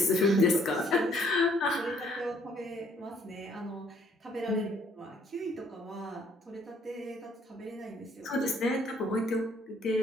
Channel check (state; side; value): normal; both; correlation 0.63